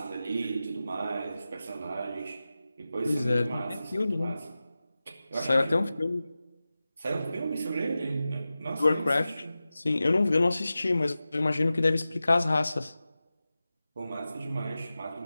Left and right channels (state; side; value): inverted; both; correlation -0.94